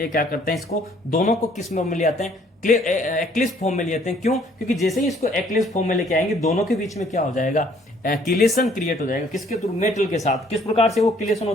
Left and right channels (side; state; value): both; normal; correlation 0.61